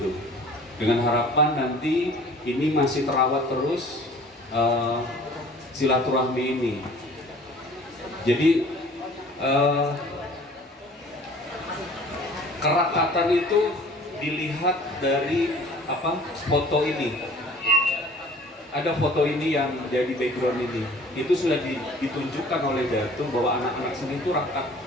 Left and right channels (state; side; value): normal; both; correlation 0.49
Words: dengan harapan nanti ini masih terawat terus silaturahmi ini. Jadi kerakatan itu dilihat dari foto ini. Ada foto ini yang jadi background ini. Itu sudah ditunjukkan oleh Datu bahwa anak-anak sini itu rakat.